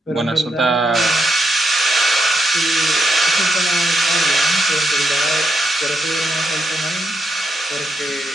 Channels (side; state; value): both; normal; correlation 0.80